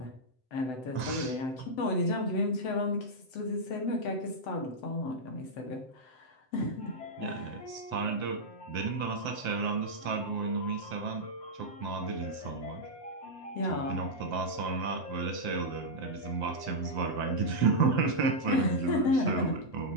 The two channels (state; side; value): late; right; 7.8 ms